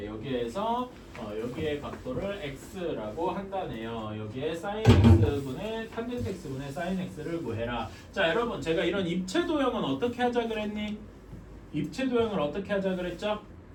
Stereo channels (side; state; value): both; identical; correlation 1.00